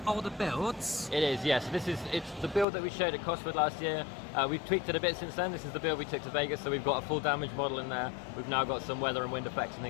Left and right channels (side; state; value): right; drops out; at 2.7 s